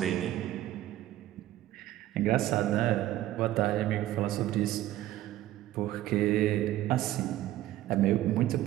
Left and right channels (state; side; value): quieter; left; 14.4 dB